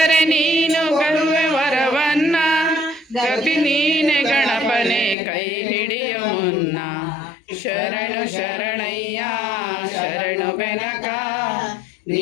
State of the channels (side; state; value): right; drops out; at 5.2 s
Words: ನೀನು ಗರುವೆ ವರವನ್ನ ಗತಿ ನೀನೆ ಗಣಪನೆ ಕೈ ಹಿಡಿಯ ಮುನ್ನ ಶರಣು ಶರಣಯ್ಯ ಶರಣು ಬೆನಕ